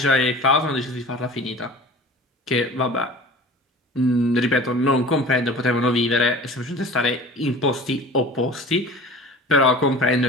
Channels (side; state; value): both; normal; correlation 0.40